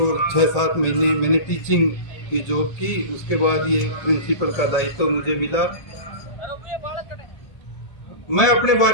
6-7 महीने मैंने टीचिंग की जॉब की, उसके बाद ये प्रिंसिपल का दायित्व तो मुझे मिला। मैं अपने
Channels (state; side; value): late; right; 1.8 ms